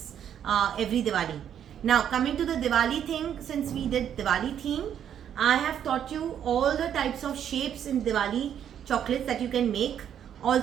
every Diwali. Now coming to the Diwali thing, since we did Diwali theme, I have taught you all the types of shapes in Diwali chocolates that you can make.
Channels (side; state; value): left; quieter; 9.4 dB